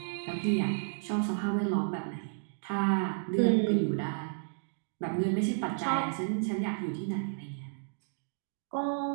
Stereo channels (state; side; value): silent; left; digital silence